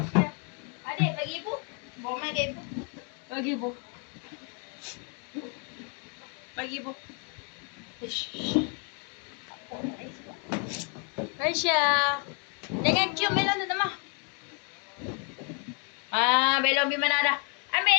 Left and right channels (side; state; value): right; quieter; 37.7 dB